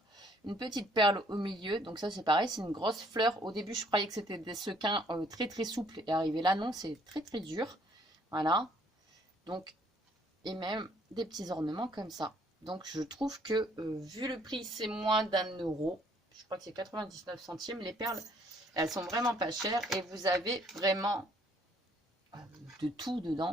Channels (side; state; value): both; normal; correlation 0.63